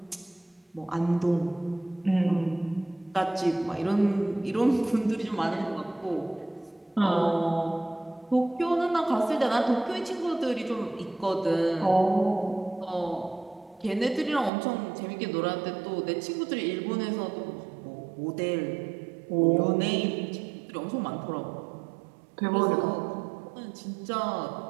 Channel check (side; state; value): left; drops out; at 14.5 s